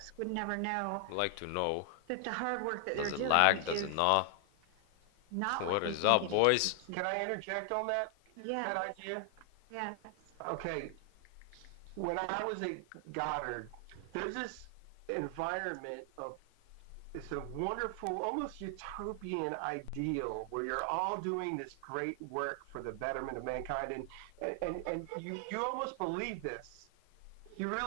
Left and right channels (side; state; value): both; different; correlation 0.00